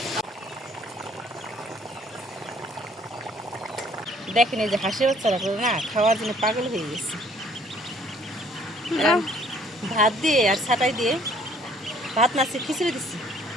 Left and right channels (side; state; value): both; normal; correlation 0.60